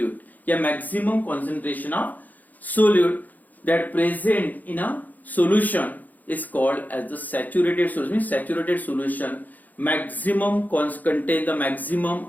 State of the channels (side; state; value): right; late; 0.082 ms